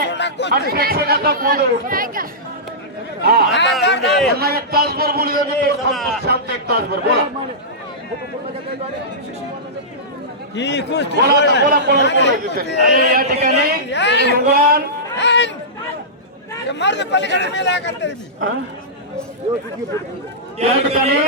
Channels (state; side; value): normal; both; correlation -0.16